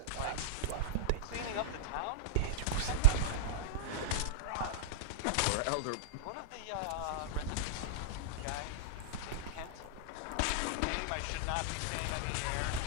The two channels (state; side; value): different; both; correlation -0.03